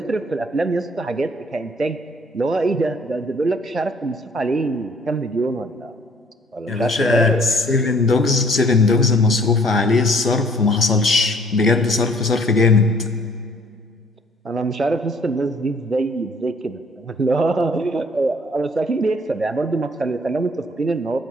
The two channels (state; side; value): normal; both; correlation 0.60